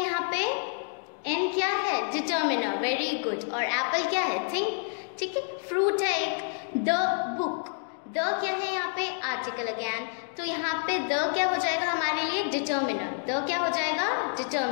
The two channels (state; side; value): silent; right; 58 dB below the other